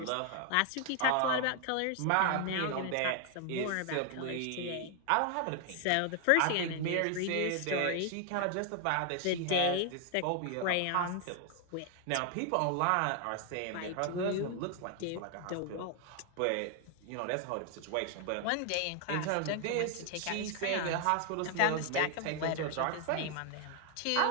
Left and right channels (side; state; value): both; different; correlation 0.00